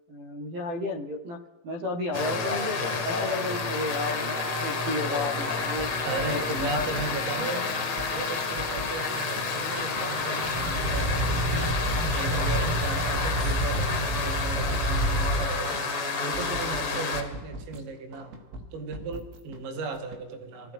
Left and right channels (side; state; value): left; late; 18 ms